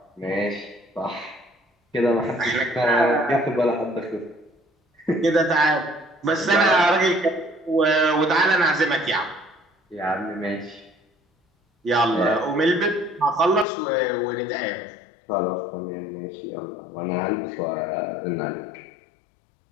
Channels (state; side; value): drops out; right; at 13.7 s